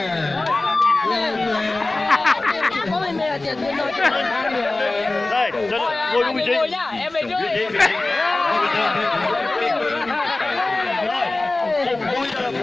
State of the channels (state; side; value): quieter; right; 3.0 dB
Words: Đây, ngồi đúng vị trí. Ngồi nhá, em về trước.